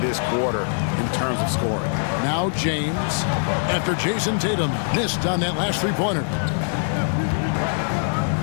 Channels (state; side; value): silent; right; digital silence